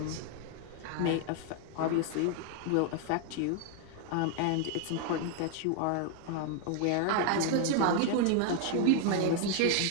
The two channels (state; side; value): different; both; correlation 0.00